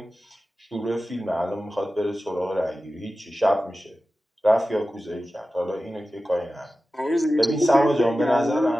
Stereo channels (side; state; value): both; normal; correlation 0.94